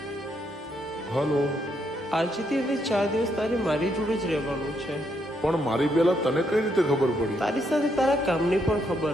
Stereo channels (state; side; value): normal; both; correlation 0.75